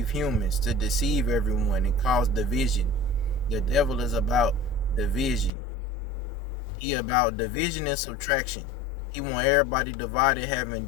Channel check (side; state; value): right; drops out; at 5.5 s